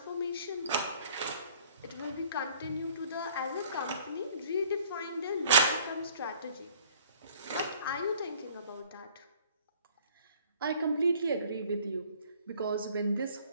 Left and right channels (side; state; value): both; inverted; correlation -0.55